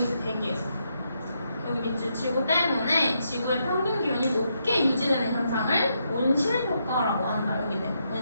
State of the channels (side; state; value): both; inverted; correlation -0.79